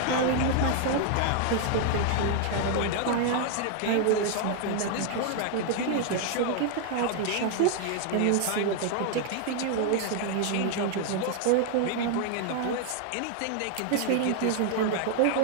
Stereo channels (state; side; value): different; both; correlation 0.00